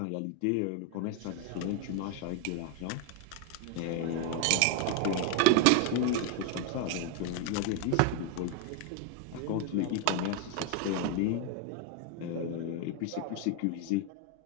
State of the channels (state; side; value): different; both; correlation 0.01